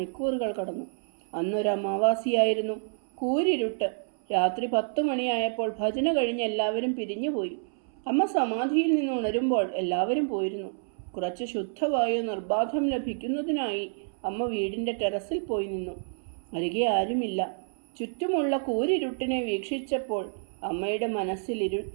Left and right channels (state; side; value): silent; left; 59 dB below the other